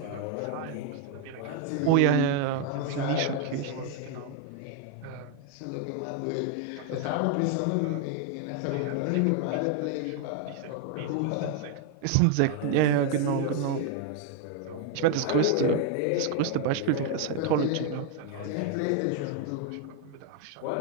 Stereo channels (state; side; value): different; both; correlation 0.01